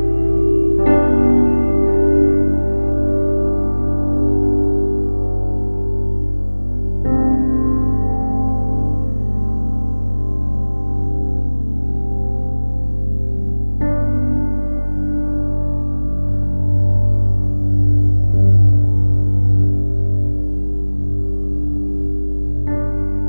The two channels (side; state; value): both; inverted; correlation -1.00